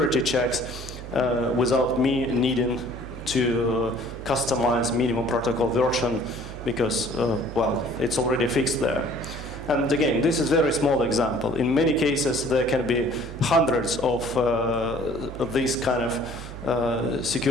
checks without me needing to customize minimum protocol version, because, well, it's already fixed there. And again, this is a very small example. In many cases, there can be hundreds of these kind of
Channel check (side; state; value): right; noise; hum, 12 dB below the sound